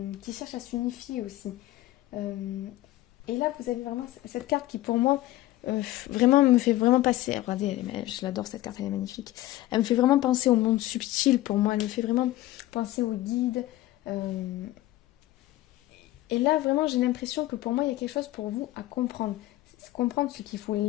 qui cherche à s'unifier aussi. Et là vous avez vraiment cette carte qui pour moi vraiment me fait vraiment passer. Regardez, je l'adore cette carte, elle est magnifique. Elle me fait vraiment penser au monde subtil pour moi. Elle me fait vraiment penser aux guides. Et là, vraiment, j'ai l'impression que pour moi, il y a quelque chose pour vous à comprendre. Comprendre ce qu'il faut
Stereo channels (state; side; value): quieter; right; 16.1 dB